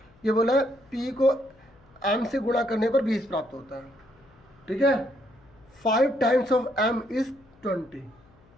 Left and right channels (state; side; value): noise; left; hum, 29 dB below the sound